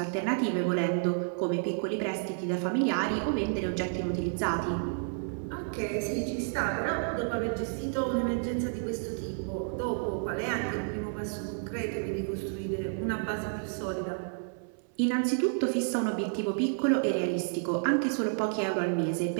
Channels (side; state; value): left; silent; 57 dB below the other